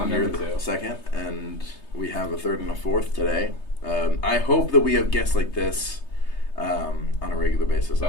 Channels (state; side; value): late; right; 3.3 ms